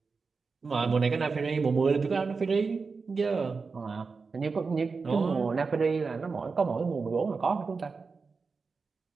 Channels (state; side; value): quieter; left; 4.6 dB